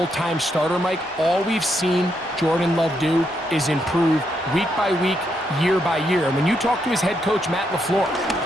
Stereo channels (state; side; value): normal; both; correlation 0.78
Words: starter, Mike, all we've seen Jordan Love do is improve week by week, year by year. And when you talk to his head coach, Matt LaFleur,